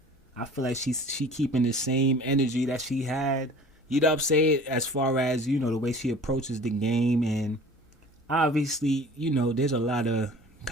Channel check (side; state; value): both; normal; correlation 0.44